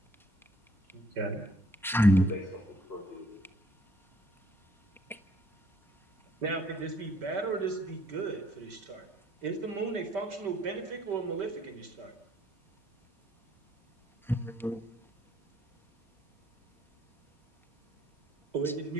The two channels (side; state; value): both; normal; correlation 0.64